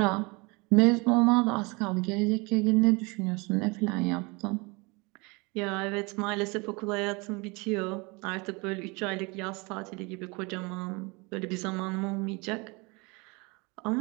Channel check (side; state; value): left; quieter; 27.4 dB